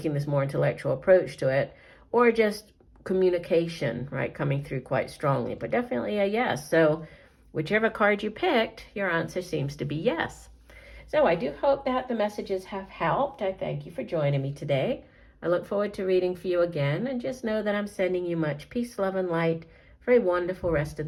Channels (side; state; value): both; identical; correlation 1.00